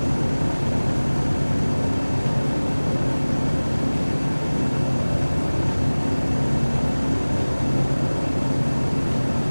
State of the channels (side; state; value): both; inverted; correlation -1.00